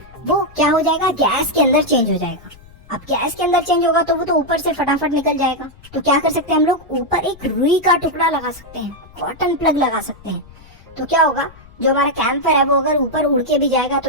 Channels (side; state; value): left; noise; rumble, 23 dB below the sound